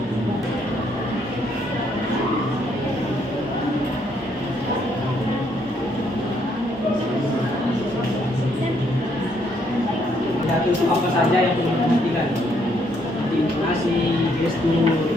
Pidato itu apa saja yang perlu diperhatikan, seperti intonasi,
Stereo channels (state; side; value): normal; both; correlation 0.71